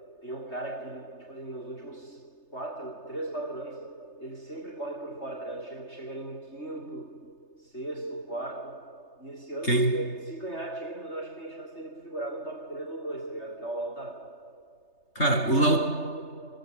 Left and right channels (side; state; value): right; late; 3.3 ms